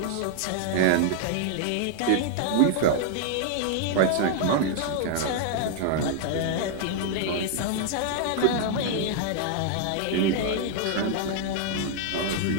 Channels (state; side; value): different; both; correlation 0.00